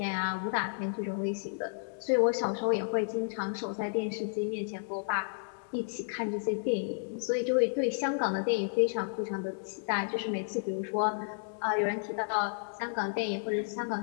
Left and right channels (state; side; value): silent; right; digital silence